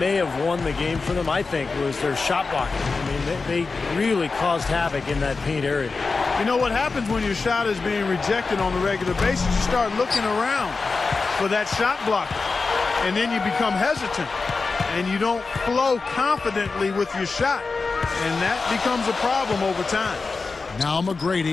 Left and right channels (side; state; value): right; quieter; 4.2 dB